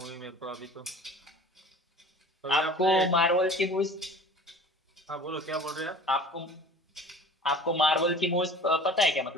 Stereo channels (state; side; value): normal; both; correlation 0.43